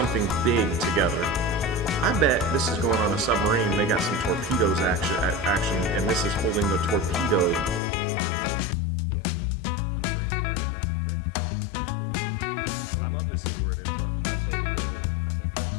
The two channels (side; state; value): right; drops out; at 7.8 s